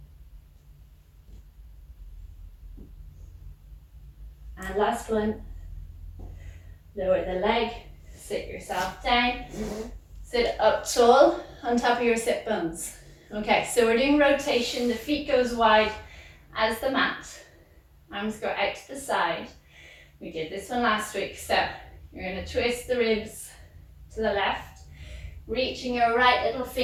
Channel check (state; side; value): identical; both; correlation 1.00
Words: And last one. Lower the leg, sit yourself down, sit up tall on top of your sit bones. Okay, so we're doing rotation. The feet go as wide as the mat. Arms go out to the side. We did this one last week. So you're going to twist the ribs to the left, reaching your right little